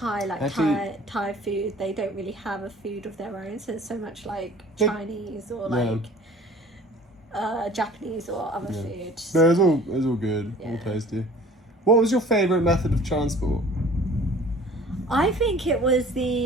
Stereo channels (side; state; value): both; normal; correlation 0.48